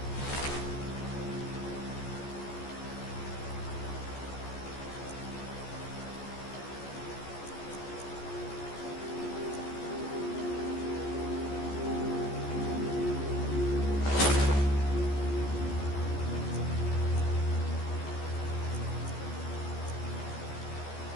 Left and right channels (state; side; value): late; right; 14 ms